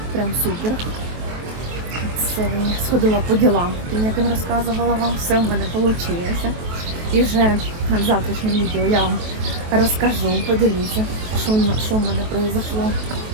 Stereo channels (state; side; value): late; left; 23 ms